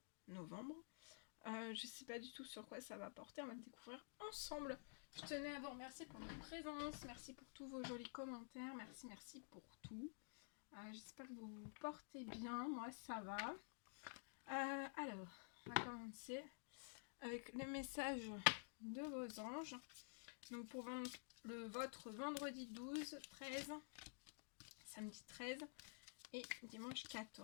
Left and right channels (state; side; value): silent; right; digital silence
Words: novembre. Je sais pas du tout sur quoi ça va porter, on va le découvrir ensemble. Je tenais à vous remercier pour votre présence, merci pour tous vos jolis commentaires, merci pour tout. J'espère que vous vous portez bien, moi ça va. Alors, on va commencer avec les messages de vos anges. Donc pour votre vendredi 12, 13, samedi 13 et dimanche